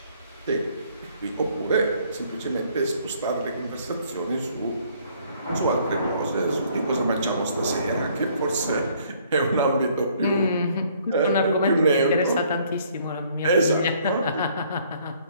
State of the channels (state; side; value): inverted; both; correlation -0.62